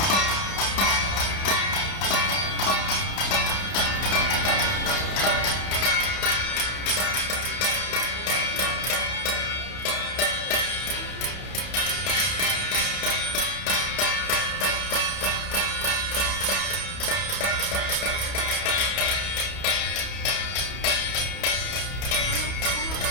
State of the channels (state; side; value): late; right; 31 ms